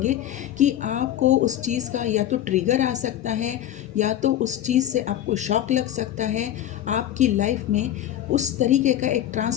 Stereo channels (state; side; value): quieter; right; 11.8 dB